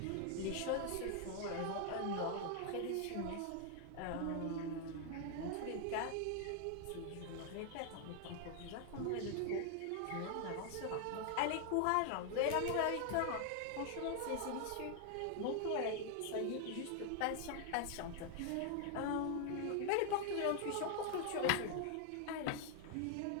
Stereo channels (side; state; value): both; different; correlation 0.00